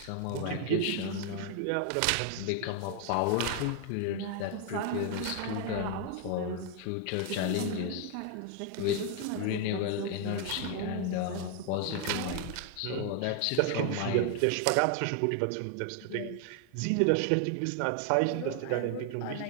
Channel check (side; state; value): both; different; correlation 0.00